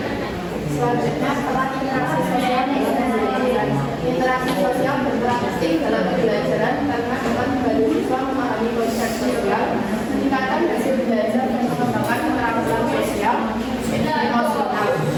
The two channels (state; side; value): identical; both; correlation 1.00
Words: Selanjutnya, peran interaksi sosial dan pembelajaran. Interaksi sosial berperan penting dalam pembelajaran karena dapat membantu siswa memahami konsep sosial, meningkatkan hasil belajar dan mengembangkan keterampilan sosial emosional.